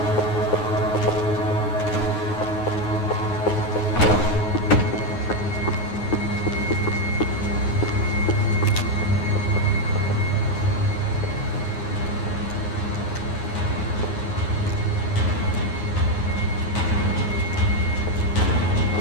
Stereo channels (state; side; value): late; right; 9.6 ms